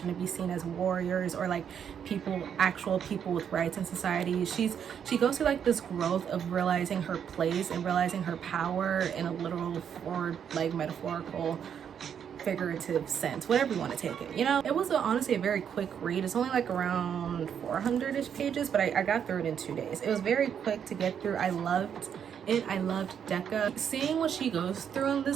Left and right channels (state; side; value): quieter; left; 8.2 dB